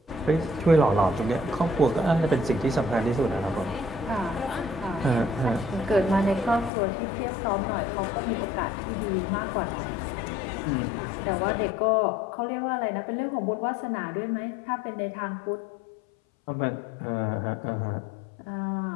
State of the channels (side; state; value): right; drops out; at 6.7 s